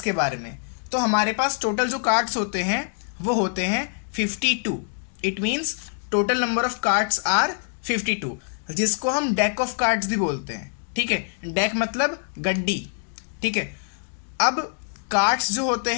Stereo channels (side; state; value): right; silent; 62 dB below the other